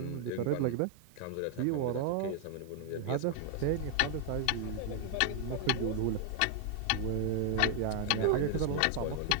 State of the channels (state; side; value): different; both; correlation 0.00